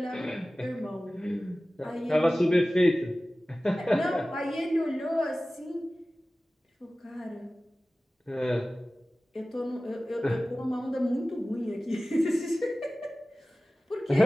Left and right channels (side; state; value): both; normal; correlation 0.97